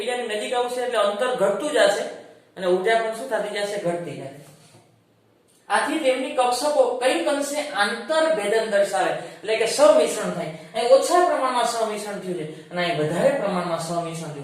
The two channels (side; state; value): both; identical; correlation 1.00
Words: નજીક આવશે એટલે અંતર ઘટતું જશે અને ઊર્જા પણ શું થતી જશે? ઘટતી જશે। આથી તેમની કક્ષકો કઈક અંશે આંતરભેદન દર્શાવે એટલે કે સમિશ્રણ થાય। અહીં ઓછા પ્રમાણમાં સમિશ્રણ થયું છે અને અહીં વધારે પ્રમાણમાં સમિશ્રણ